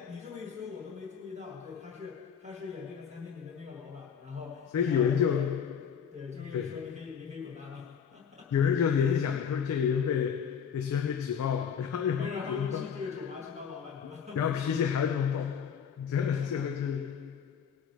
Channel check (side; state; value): right; quieter; 7.4 dB